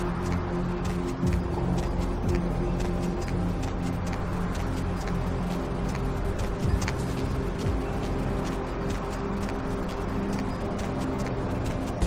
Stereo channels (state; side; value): identical; both; correlation 1.00